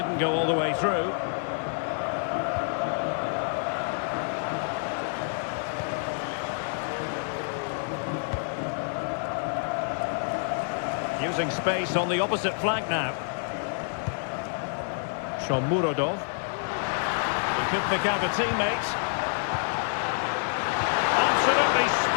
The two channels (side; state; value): right; silent; 59 dB below the other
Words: go all the way through. Using space on the opposite flank now. Shomurodov. He could pick out a teammate. Absolutely